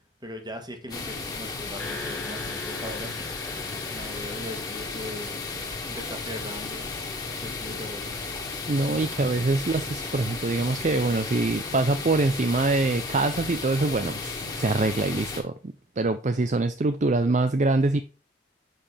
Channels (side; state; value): both; normal; correlation 0.51